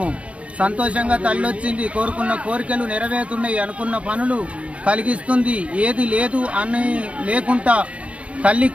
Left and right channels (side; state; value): left; late; 0.063 ms